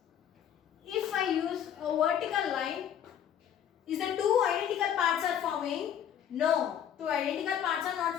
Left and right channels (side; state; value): right; quieter; 9.5 dB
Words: If I use a vertical line, is the 2 identical parts are forming? No. 2 identical parts are not